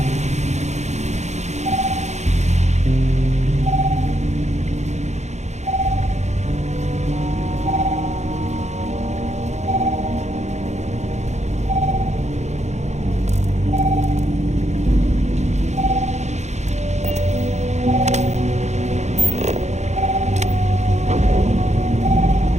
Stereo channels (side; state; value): left; late; 0.33 ms